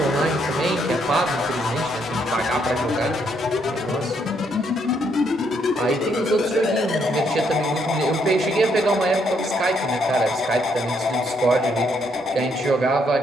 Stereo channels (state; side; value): normal; both; correlation 0.73